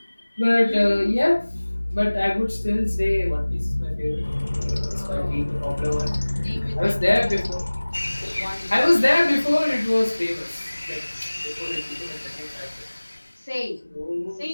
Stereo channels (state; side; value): inverted; both; correlation -1.00